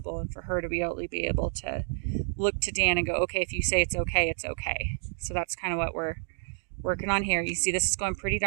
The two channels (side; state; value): left; silent; digital silence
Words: and for her to be able to look to Dan and go, okay, if you say it's okay, it's okay. So that's kind of what we're working on here. You see, this is going pretty